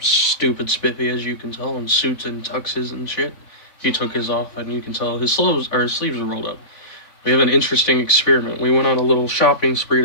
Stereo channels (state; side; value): late; right; 3.5 ms